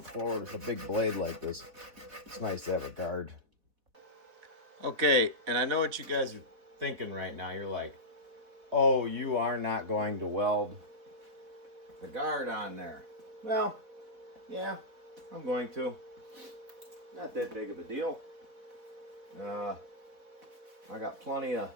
forward with a big blade like this. It's nice to have a guard. Okay, and I know what you guys are thinking right now. You're like, oh, you are not going to weld the guard on there. Well, yeah, I'm going to. Not that big of a deal. I got plenty of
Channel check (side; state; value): left; late; 3.9 ms